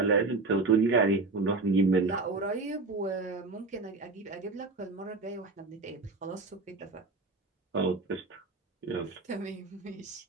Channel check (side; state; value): left; quieter; 3.6 dB